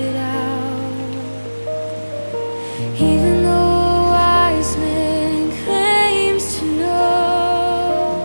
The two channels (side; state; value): both; inverted; correlation -1.00